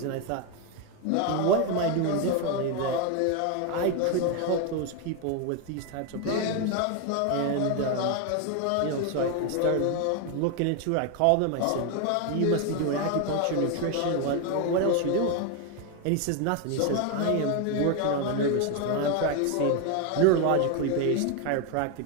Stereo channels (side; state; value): both; different; correlation 0.01